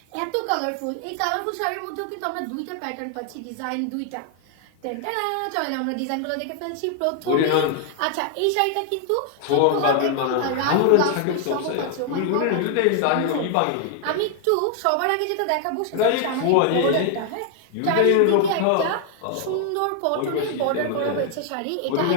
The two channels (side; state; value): both; different; correlation 0.00